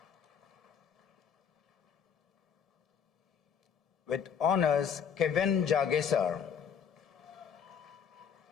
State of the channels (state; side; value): quieter; right; 7.3 dB